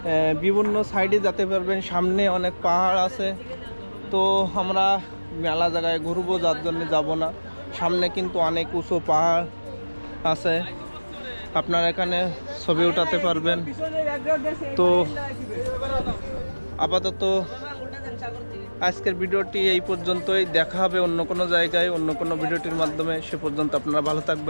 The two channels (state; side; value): inverted; both; correlation -1.00